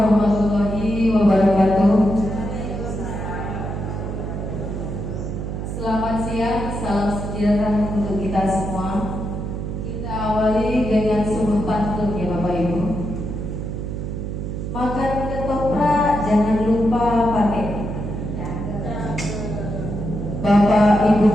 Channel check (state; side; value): noise; right; hum, 5 dB below the sound